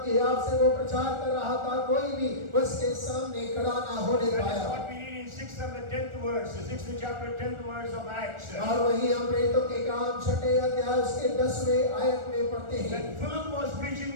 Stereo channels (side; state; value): left; late; 1.4 ms